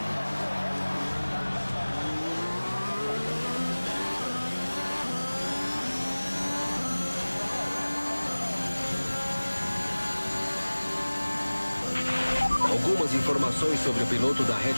Algumas informações sobre o piloto da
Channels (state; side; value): inverted; both; correlation -1.00